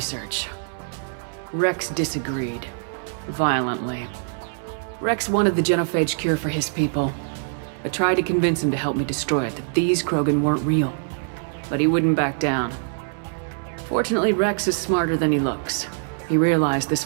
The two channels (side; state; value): left; silent; 59 dB below the other